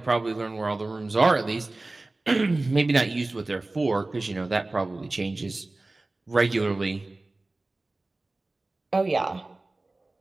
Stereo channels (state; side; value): quieter; left; 3.0 dB